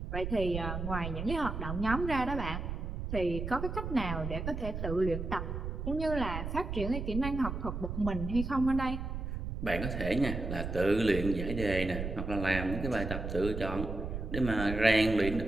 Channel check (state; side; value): noise; right; rumble, 5 dB below the sound